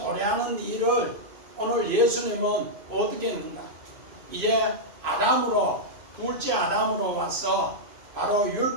일을 오늘 예수님은 어떻게 했는가? 이제 아담으로 둘째 아담으로 와서 바로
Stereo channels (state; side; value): late; left; 2.5 ms